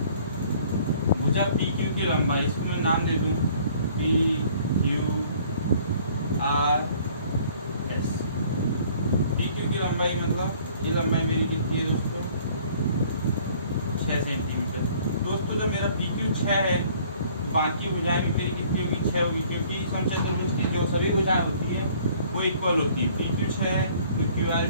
भुजा PQ की लंबाई, इसको मैं नाम दे दूं PQRS। PQ की लंबाई मतलब ये लंबाई मेरी कितनी है दोस्तों, 6 सेंटीमीटर। दोस्तों जब मेरा PQ 6 है, बाकी भुजाएं भी मेरी कितनी होगी, 6 होगी, क्योंकि समचतुर्भुज त्रिभुज की जो सभी भुजाएं होती है वो इक्वल होती है। PQ 6 है तो QR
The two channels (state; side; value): inverted; both; correlation -0.56